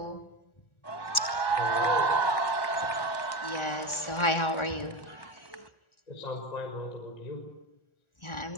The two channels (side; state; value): right; late; 1.4 ms